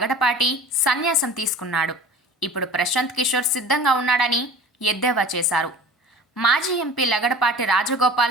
సన్యాసం తీసుకున్నాడు, ఇప్పుడు ప్రశాంత్ కిషోర్ సిద్ధంగా ఉన్నాడని ఎద్దేవా చేశారు. మాజీ ఎంపీ లగడపాటి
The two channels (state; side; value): normal; both; correlation 0.40